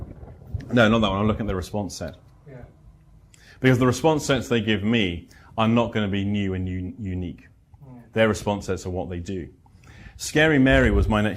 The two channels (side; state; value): both; identical; correlation 1.00